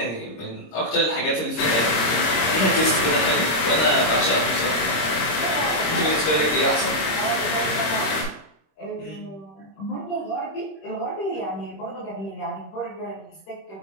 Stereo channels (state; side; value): late; right; 26 ms